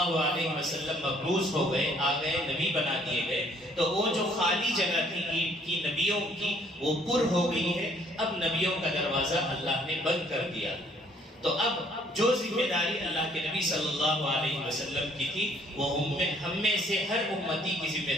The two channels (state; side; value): normal; both; correlation 0.62